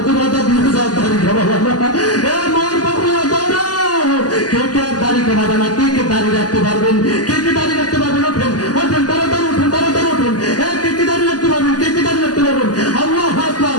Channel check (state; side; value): late; right; 0.69 ms